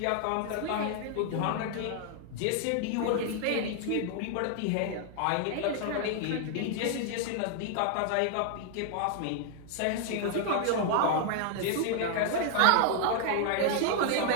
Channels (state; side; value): different; both; correlation 0.00